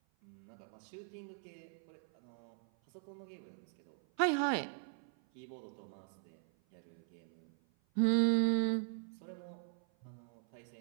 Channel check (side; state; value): left; silent; 51 dB below the other